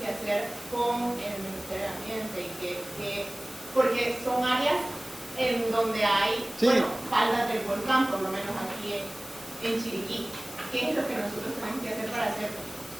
hacer con el Ministerio de Ambiente? Porque son áreas en donde hay faldas del volcán, por lo menos aquí en Chiriquí. ¿Qué es lo que nosotros tenemos que hacer para hacer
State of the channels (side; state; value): left; noise; hiss, 16 dB below the sound